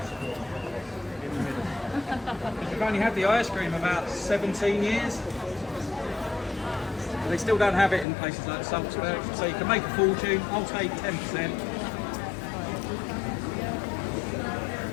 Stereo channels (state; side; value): drops out; right; at 8.1 s